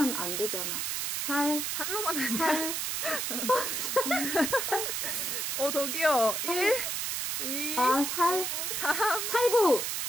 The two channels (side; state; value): right; noise; hiss, 1 dB below the sound